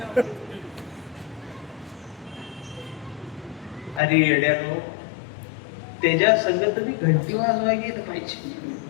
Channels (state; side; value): drops out; right; at 4.0 s